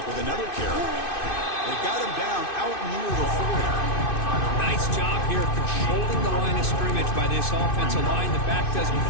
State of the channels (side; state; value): right; late; 2.6 ms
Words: with another carry. They got him down out near the 40. Nice job here controlling the line of scrimmage by this offensive line. The back does what